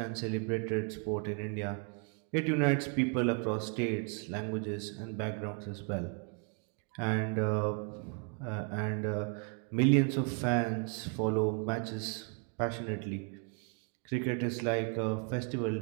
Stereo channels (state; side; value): quieter; left; 37.8 dB